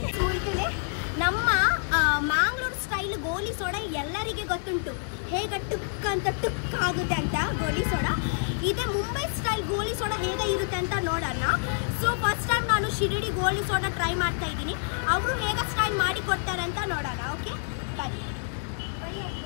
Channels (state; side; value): silent; right; 60 dB below the other